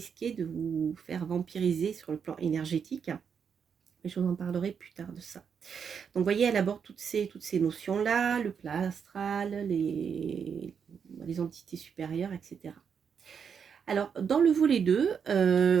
de vous faire vampiriser sur le plan énergétique. Mais je vous en parlerai plus tard de ça. Donc, vous voyez, elle aborde toutes ces notions-là, le plat astral, les entités supérieures, etc. Alors, dans le volet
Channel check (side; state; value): left; quieter; 6.9 dB